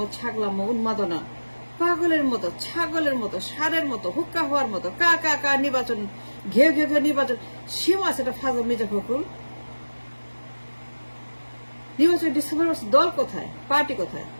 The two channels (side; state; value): both; inverted; correlation -1.00